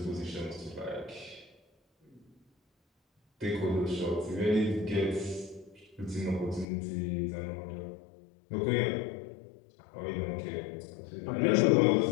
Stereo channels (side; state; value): right; drops out; at 6.7 s